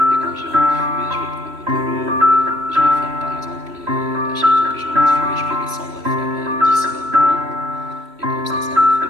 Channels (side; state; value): left; late; 3.1 ms